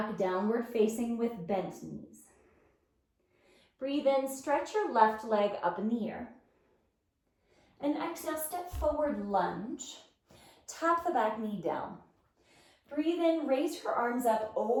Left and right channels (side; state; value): both; identical; correlation 1.00